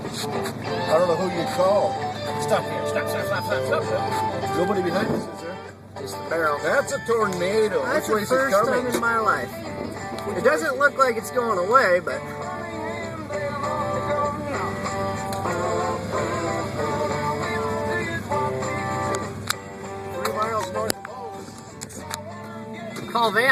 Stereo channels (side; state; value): both; identical; correlation 1.00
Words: I don't know who you'd call. Stop here. Stop. Nobody behind us, is there? Just the barrel. That's a tornado. That's Which way the is it first coming? time in my life. It doesn't look like it's going away, but Miles north of Bose. call